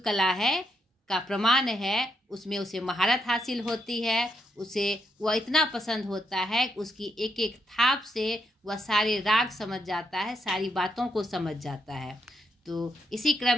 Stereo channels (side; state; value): both; normal; correlation 0.78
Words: कला है का प्रमाण है उसमें उसे महारत हासिल होती है। उसे वह इतना पसंद होता है, उसकी एक एक थाप से वह सारे राग समझ जाता है, सारी बातों को समझ जाता है। तो इसी